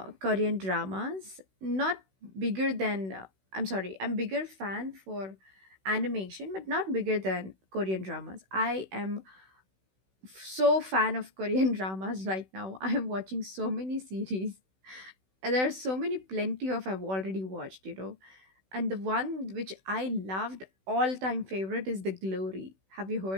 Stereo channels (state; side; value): late; left; 16 ms